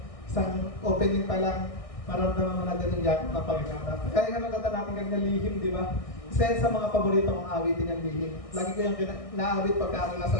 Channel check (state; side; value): late; right; 1.6 ms